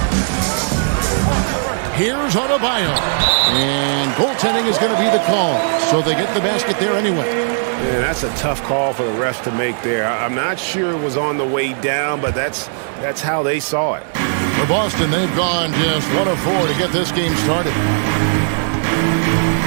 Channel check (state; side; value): silent; left; digital silence